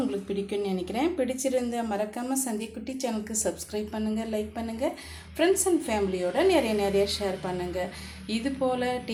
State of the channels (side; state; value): both; identical; correlation 1.00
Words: பிடிக்கும்னு நினைக்கிறேன். பிடிச்சிருந்த மறக்காமல் சந்திக்குட்டி சேனலுக்கு சப்ஸ்கிரைப் பண்ணுங்கள், லைக் பண்ணுங்கள், ஃப்ரெண்ட்ஸ் அண்ட் ஃபேமிலியோட நிறைய ஷேர் பண்ணுங்கள். இது போல்